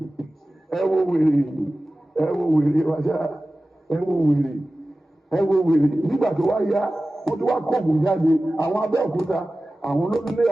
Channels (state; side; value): normal; both; correlation 0.96